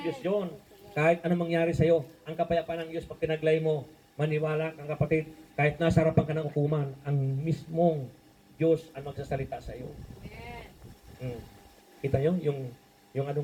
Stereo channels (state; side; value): identical; both; correlation 1.00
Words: Diyos yun. Kahit anong mangyari sa'yo, ang kapayapaan ng Diyos, pag tinaglay mo, maniwala kang kapatid, kahit nasa harapan ka ng hukuman, ang mismong Diyos ang magsasalita sa iyo. Kita nyo? Yung ano